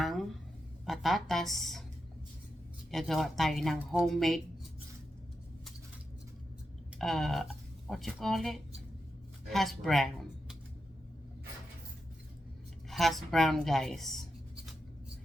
patatas. Gagawa tayo ng homemade, what you call it? Hash brown. Hash brown guys.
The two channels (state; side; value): normal; both; correlation 0.87